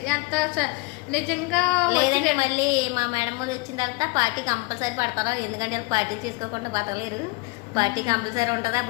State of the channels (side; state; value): right; quieter; 26.2 dB